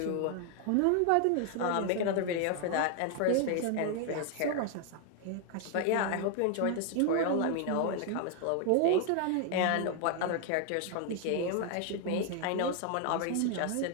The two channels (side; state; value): both; different; correlation 0.00